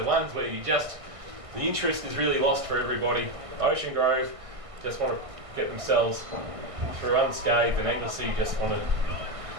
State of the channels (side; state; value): left; late; 1.6 ms